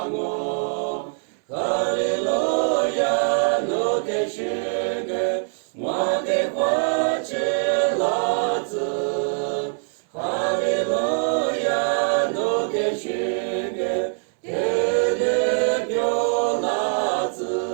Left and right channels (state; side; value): silent; left; 63 dB below the other